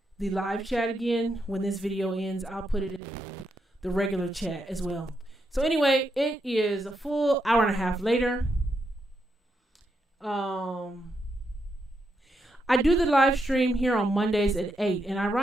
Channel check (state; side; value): normal; both; correlation 0.82